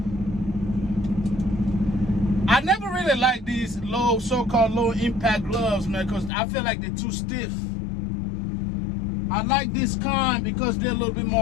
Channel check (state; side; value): drops out; right; at 6.3 s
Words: I never really like these so-called low impact gloves, man, because I feel like they're too stiff. I like this kind because they're a little bit